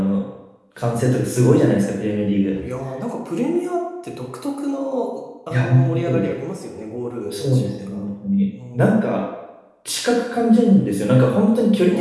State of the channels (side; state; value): both; identical; correlation 1.00